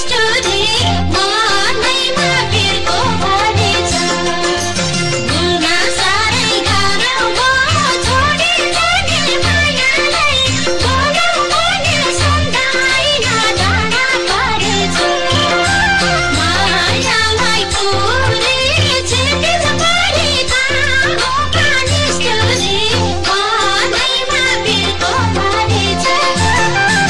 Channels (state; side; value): identical; both; correlation 1.00